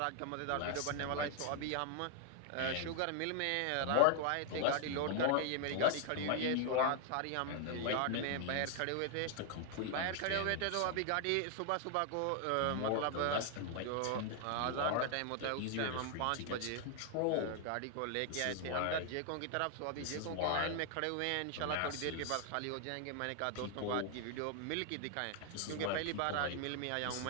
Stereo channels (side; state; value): both; different; correlation 0.00